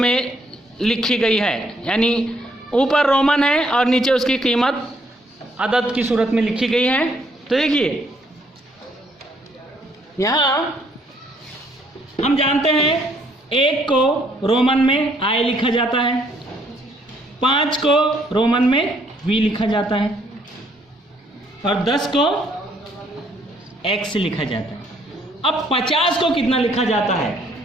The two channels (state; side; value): normal; both; correlation 0.68